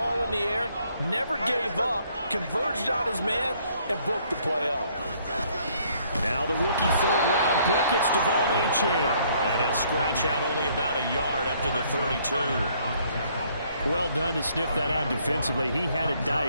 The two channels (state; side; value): inverted; both; correlation -0.65